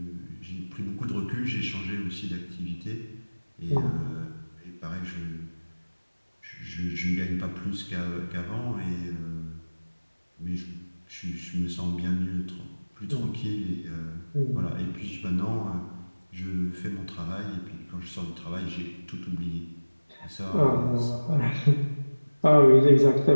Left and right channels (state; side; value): inverted; both; correlation -1.00